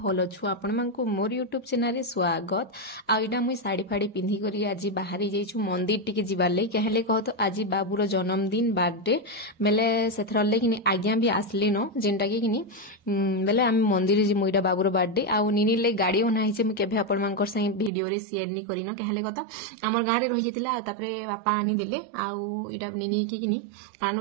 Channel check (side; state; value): left; drops out; at 17.9 s